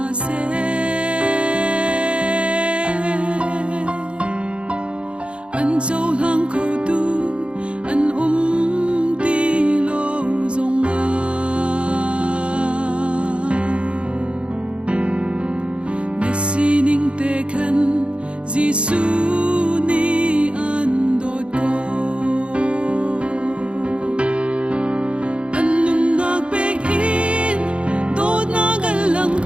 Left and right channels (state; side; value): late; left; 0.058 ms